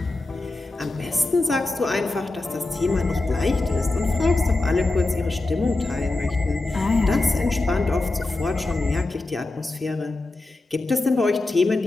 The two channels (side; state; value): right; quieter; 3.1 dB